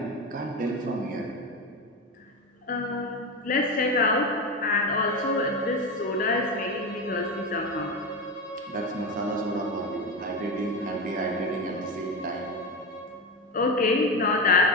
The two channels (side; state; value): both; normal; correlation 0.18